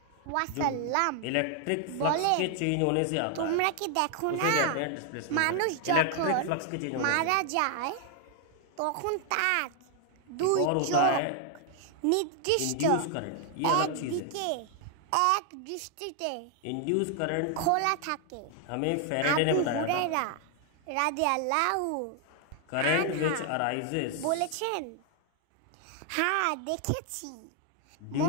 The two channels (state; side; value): different; both; correlation 0.00